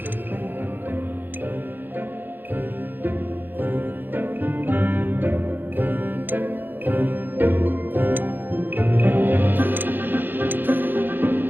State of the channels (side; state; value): left; late; 0.094 ms